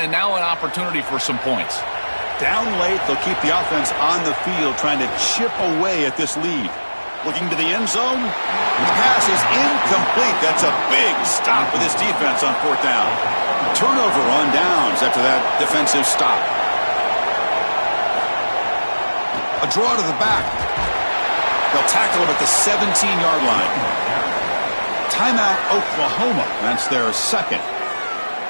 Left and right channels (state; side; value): inverted; both; correlation -1.00